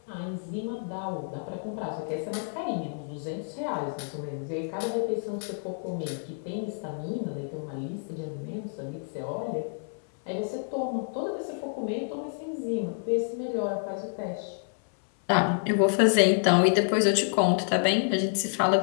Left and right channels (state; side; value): silent; right; 59 dB below the other